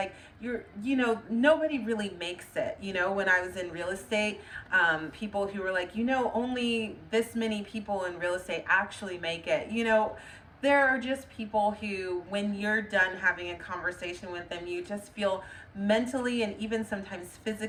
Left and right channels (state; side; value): identical; both; correlation 1.00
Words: nobody really makes it. When I was in real estate, people who were like, only this many people in real estate actually make it. There are just people who, when you're done having a conversation with them, you just feel mentally and even sometimes